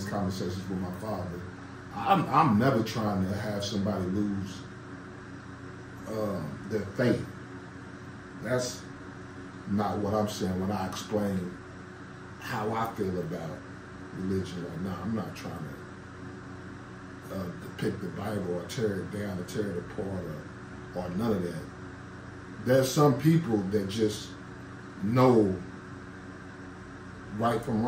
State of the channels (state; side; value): identical; both; correlation 1.00